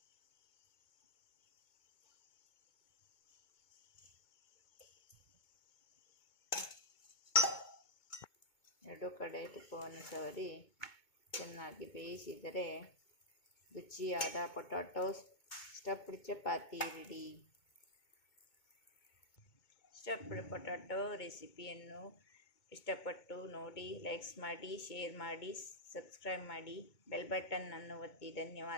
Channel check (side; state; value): right; late; 2.2 ms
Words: ಎರಡು ಕಡೆ ತುಪ್ಪವನ್ನು ಸವರಿ ಚೆನ್ನಾಗಿ ಬೇಯಿಸಿದರೆ ರುಚಿಯಾದ potato stuffed chapati ready. Stuffed potato ರೆಸಿಪಿಯನ್ನು ಇಷ್ಟಪಟ್ಟು ನೋಡಿ, ಲೈಕ್ಸ್ ಮಾಡಿ, ಶೇರ್ ಮಾಡಿ, ಸಬ್ಸ್ಕ್ರೈಬ್ ಮಾಡಿ, ಬೆಲ್ ಬಟನ್ ಅನ್ನು ಒತ್ತಿ.